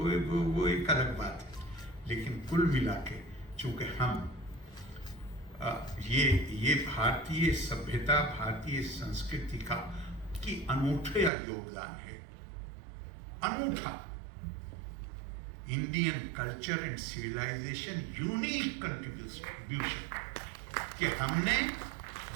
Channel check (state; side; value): drops out; left; at 11.3 s